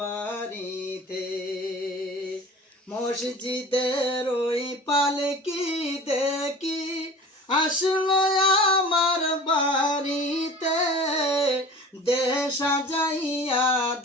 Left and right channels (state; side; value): normal; both; correlation 0.41